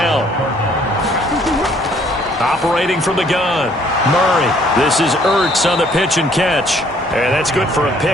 Operating from the gun, Murray. This is Ertz on the pitch and catch. And that's good for a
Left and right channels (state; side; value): normal; both; correlation 0.62